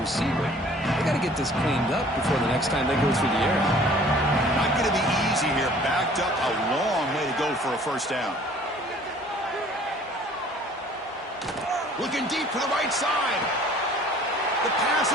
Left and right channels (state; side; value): normal; both; correlation 0.52